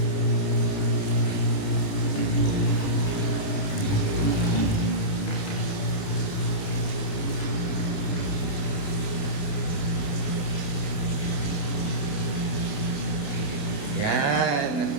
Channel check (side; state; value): right; late; 28 ms